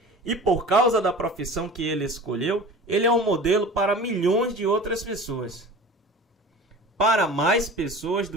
E por causa da profissão que ele escolheu, ele é um modelo para milhões de outras pessoas. Para mais pessoas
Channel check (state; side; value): normal; both; correlation 0.38